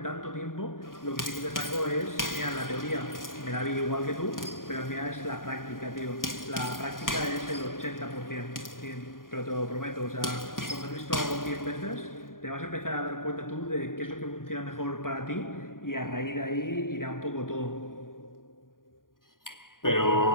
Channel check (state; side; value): late; right; 0.90 ms